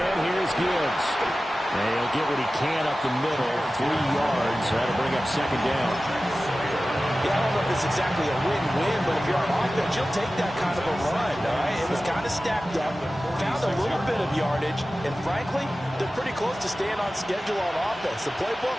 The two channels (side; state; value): both; normal; correlation 0.95